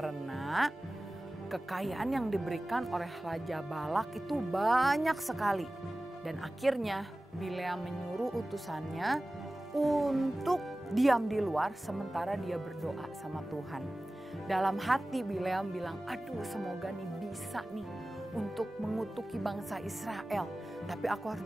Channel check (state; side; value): normal; both; correlation 0.97